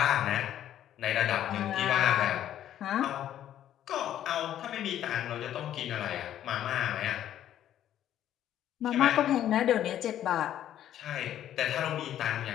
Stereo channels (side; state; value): right; quieter; 11.4 dB